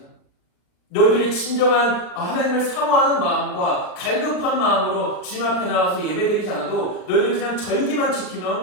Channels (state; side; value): late; right; 39 ms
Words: 너희들이 진정한 하나님을 사모하는 마음과 갈급한 마음으로 주님 앞에 나와서 예배드리지 않아도 너희들 그냥 절기만